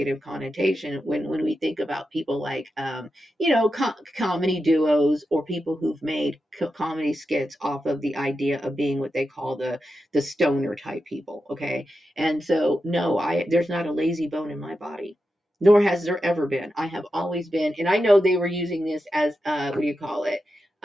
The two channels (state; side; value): normal; both; correlation 0.89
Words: connotation when we think about people like, comedy duos or people who've made comedy skits off of the idea of being what they call the stoner type people. Okay. And so, no, there's not a lazy bone in my body, nor has there ever been. I have always been, and I know they were using this as, what do you call it?